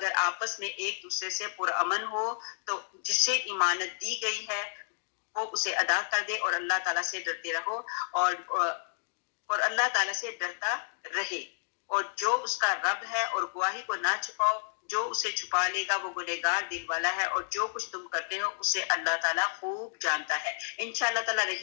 آپس میں ایک دوسرے سے پرامن ہو تو جس سے امانت دی گئی ہے وہ اسے ادا کر دے اور اللہ تعالیٰ سے ڈرتے رہو, اور اللہ تعالیٰ سے ڈرتا رہے, اور جو اس کا رب ہے, اور گواہی کو نہ چھپاؤ, جو اسے چھپا لے گا وہ گنہگار دل والا ہے, اور جو کچھ تم کرتے ہو اسے اللہ تعالیٰ خوب جانتا ہے. انشاءاللہ تعالیٰ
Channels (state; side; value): silent; right; digital silence